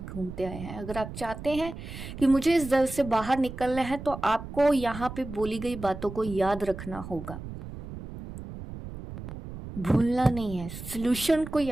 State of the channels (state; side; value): noise; right; rumble, 11 dB below the sound